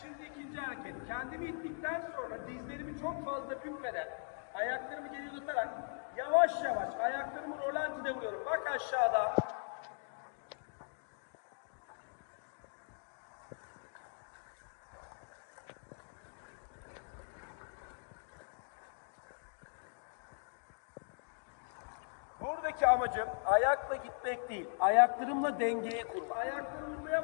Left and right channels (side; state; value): right; silent; digital silence